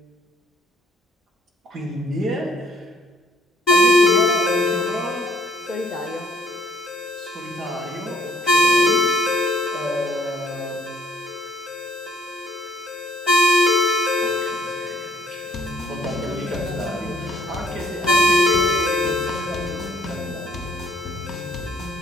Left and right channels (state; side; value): normal; both; correlation 0.63